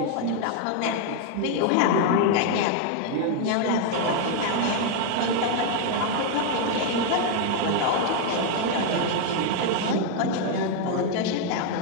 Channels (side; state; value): both; different; correlation 0.01